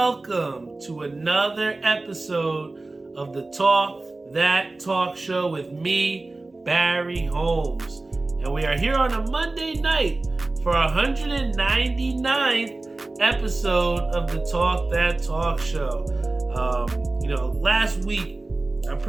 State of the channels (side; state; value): left; quieter; 3.1 dB